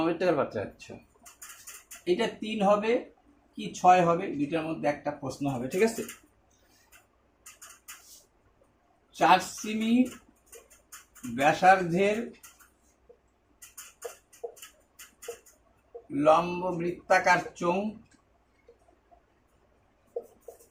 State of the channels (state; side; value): identical; both; correlation 1.00